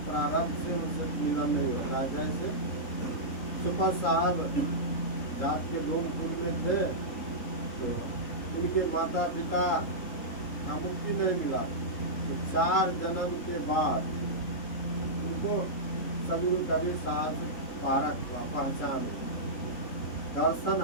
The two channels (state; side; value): late; right; 3.7 ms